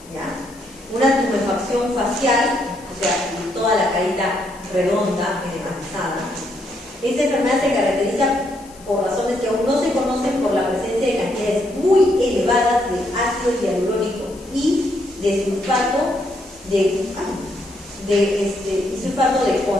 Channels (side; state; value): left; noise; hiss, 23 dB below the sound